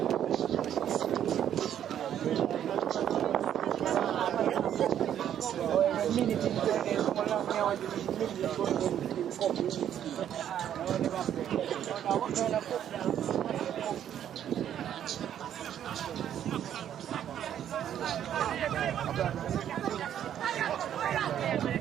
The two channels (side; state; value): left; quieter; 10.1 dB